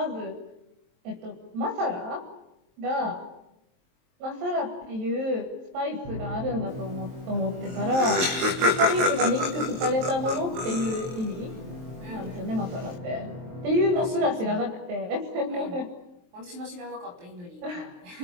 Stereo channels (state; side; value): late; left; 23 ms